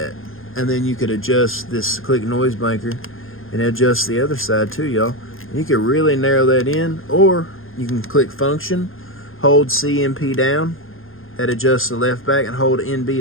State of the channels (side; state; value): right; late; 0.60 ms